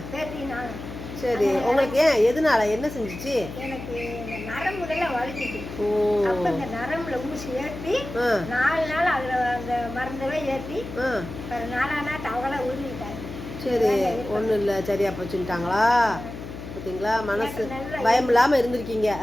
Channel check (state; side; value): noise; left; hum, 10 dB below the sound